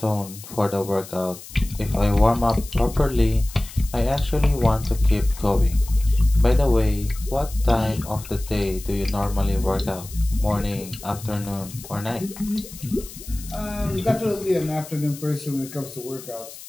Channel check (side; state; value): left; noise; hiss, 16 dB below the sound